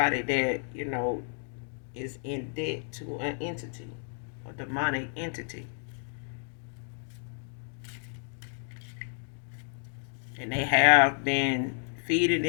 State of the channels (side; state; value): right; silent; 57 dB below the other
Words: that, is in debt to an entity, a demonic entity. And they have been feeding